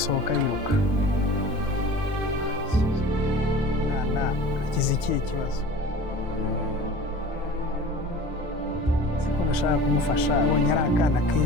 yiruka? Mwana agize ikihe kibazo? Siko nashaka kumufasha, abonye ari akana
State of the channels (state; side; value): normal; both; correlation 0.40